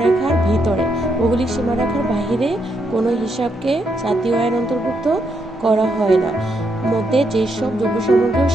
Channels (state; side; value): normal; both; correlation 0.78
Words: ভিতরে, ভৌগোলিক সীমারেখার বাহিরে কোনো হিসাবকে জাতীয় আয়ের অন্তর্ভুক্ত করা হয় না। মধ্যে যেসব দ্রব্যসামগ্রী ও